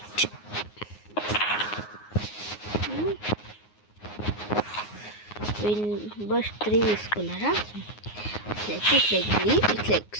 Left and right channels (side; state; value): right; late; 9.6 ms